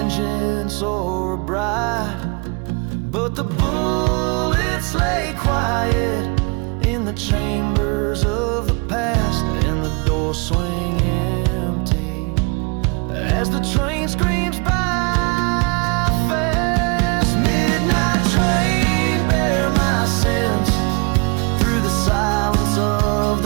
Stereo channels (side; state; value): left; quieter; 30.6 dB